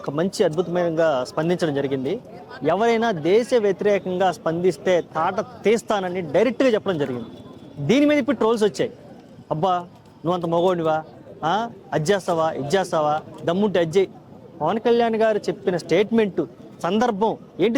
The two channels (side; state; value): both; identical; correlation 1.00